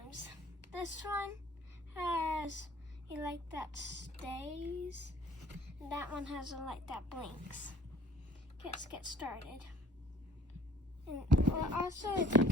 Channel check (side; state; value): both; normal; correlation 0.55